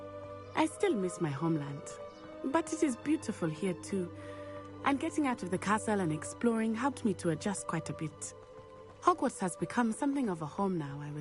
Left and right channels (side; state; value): both; identical; correlation 1.00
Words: I still miss my homeland, but it is beautiful here too. And getting out of the castle and exploring helped me to adjust quite a bit. Hogwarts has become something of a home now, I